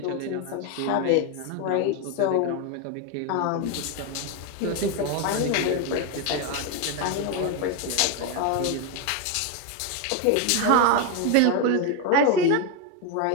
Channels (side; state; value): both; different; correlation 0.02